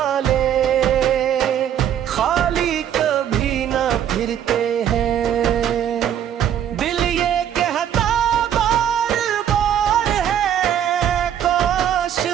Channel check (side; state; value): left; quieter; 9.9 dB